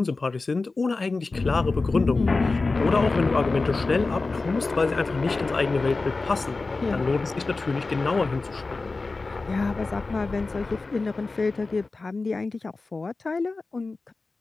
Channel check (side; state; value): right; quieter; 3.7 dB